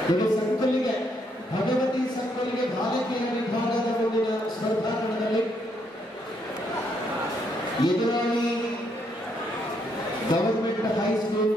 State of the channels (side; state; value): both; normal; correlation 0.74